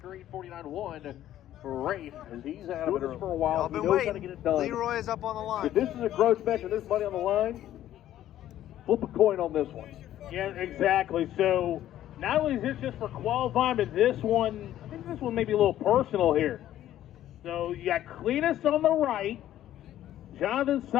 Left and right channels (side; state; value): right; quieter; 12.6 dB